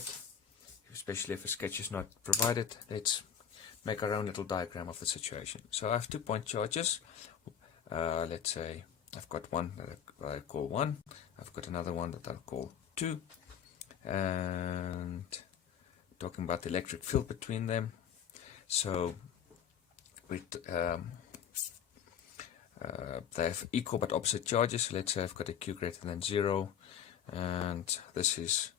especially if a sketch is not provided, let's make our own little diagram of the situation. So I have 2 point charges. Let's say I've got one that I call 1, I've got another one that I'll call 2, and talking about the electric field between them. So they have equal but opposite charges. So let's say I've got a Q greater than 0, and this is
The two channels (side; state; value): right; quieter; 8.6 dB